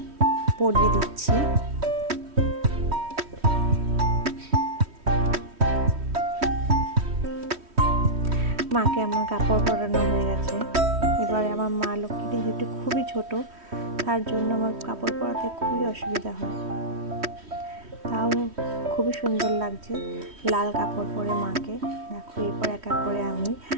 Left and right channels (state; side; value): late; left; 3.1 ms